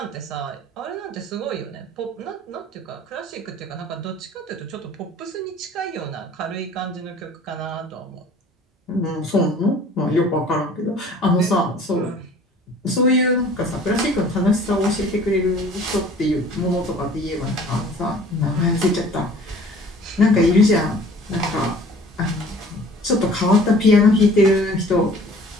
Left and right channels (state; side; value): normal; both; correlation 0.49